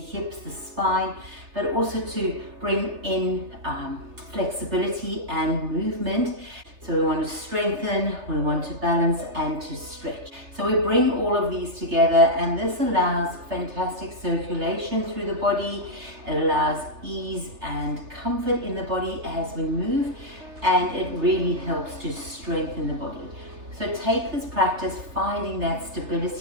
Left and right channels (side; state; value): left; late; 3.3 ms